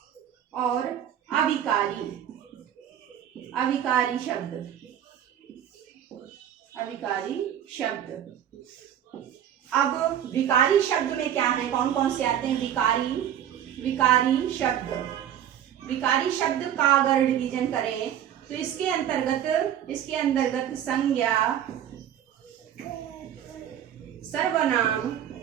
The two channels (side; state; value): left; quieter; 10.2 dB